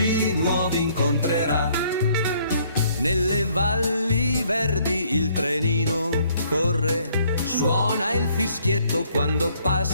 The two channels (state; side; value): inverted; both; correlation -0.65